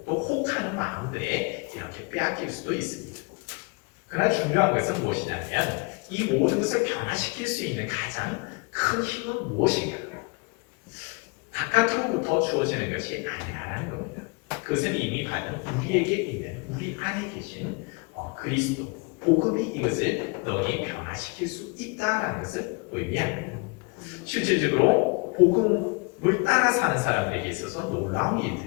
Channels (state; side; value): quieter; right; 29.9 dB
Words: 또 혹하는 마음들에 이렇게 빼앗길 수도 있습니다. 그러나 중요한 것은 무엇이냐면 이 모든 것을 변화시킬 수 있는 가장 큰 힘은 무엇인가? 바깥으로부터 주어지는 것이 아니라는 겁니다. 그것은 이미 받은 우리에게 있는 우리 안에 계신 그리스도 복음이 이것을 너희 변화시킬 수 있다라는 것을 의미합니다. 실질적으로 복음을 따라 사는 사람들에게 있어서 놀라운